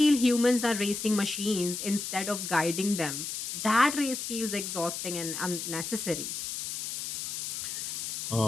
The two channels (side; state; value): left; noise; hiss, 4 dB below the sound